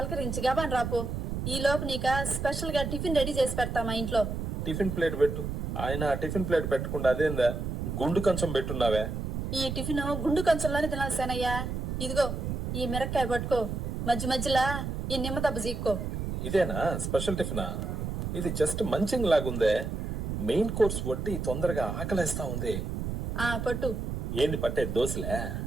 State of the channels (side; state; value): right; noise; rumble, 3 dB below the sound